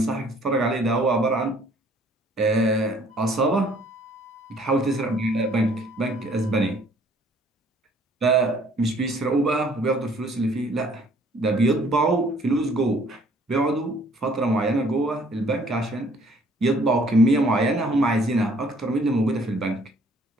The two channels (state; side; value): normal; both; correlation 0.59